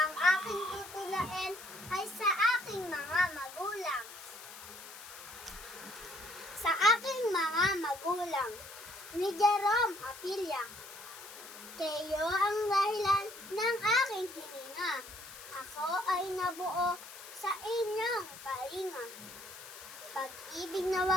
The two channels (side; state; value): left; noise; hiss, 15 dB below the sound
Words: aking tutulain ay sa aking mga magulang. Sa aking mga magulang, ni Jerome Apilla. Kayo ang dahilan ng aking hininga. Ako ay nabuo sa inyong kalinga. Pag-ibig na